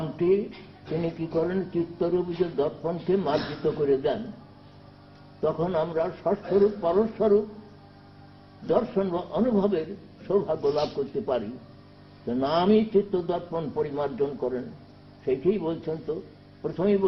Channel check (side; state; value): both; identical; correlation 1.00